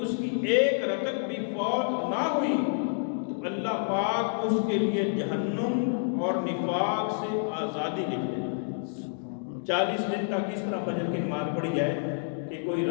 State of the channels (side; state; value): right; silent; digital silence